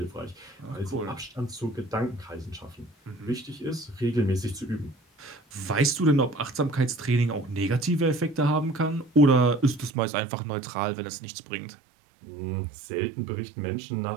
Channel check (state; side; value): drops out; left; at 10.0 s